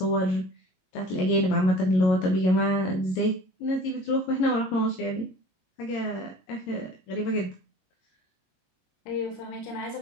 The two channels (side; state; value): right; late; 22 ms